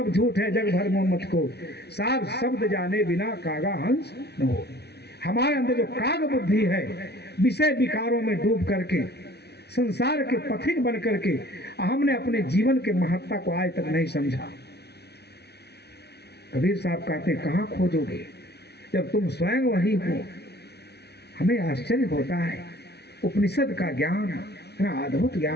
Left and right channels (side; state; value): right; late; 0.49 ms